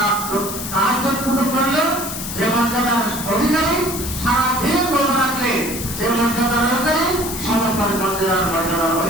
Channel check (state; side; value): noise; left; hiss, 7 dB below the sound